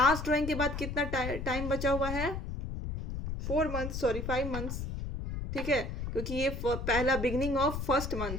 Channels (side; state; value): left; noise; rumble, 5 dB below the sound